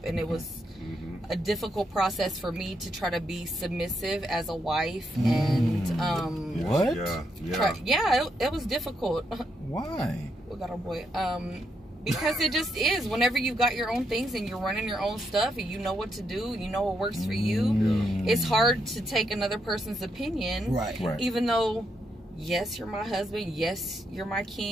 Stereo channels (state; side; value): normal; both; correlation 0.80